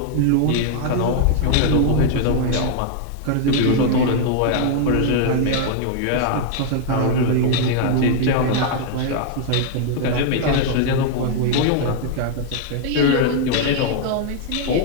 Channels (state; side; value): different; both; correlation 0.00